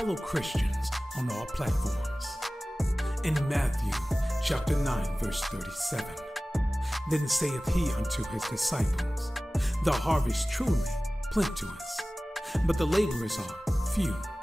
Christians on all platforms. In Matthew chapter 9 verse 37, then saith he unto his disciples, the harvest truly plenteous, but the laborers are few.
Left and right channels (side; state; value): both; normal; correlation 0.97